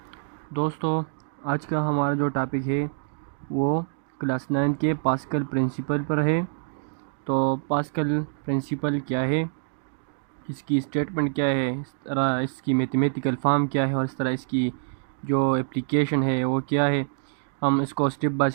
दोस्तों, आज का हमारा जो टॉपिक है वो क्लास 9 के पास्कल प्रिंसिपल पर है। तो पास्कल प्रिंसिपल क्या है, इसकी स्टेटमेंट क्या है, इस तरह इसकी मैथमेटिकल फॉर्म क्या है और इस तरह इसकी जो एप्लीकेशन है वो क्या है, हम इसको स्टेप बाय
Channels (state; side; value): silent; left; digital silence